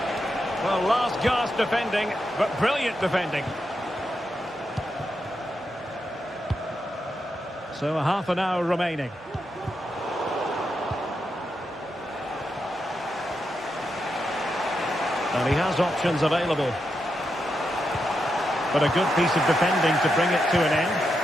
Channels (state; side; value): normal; both; correlation 0.85